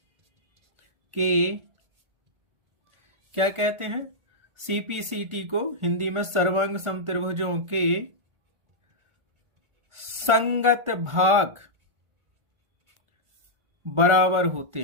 के, क्या कहते हैं, CPCT को हिंदी में सर्वांग सम त्रिभुजों के संगत भाग बराबर होते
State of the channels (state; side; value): late; left; 1.4 ms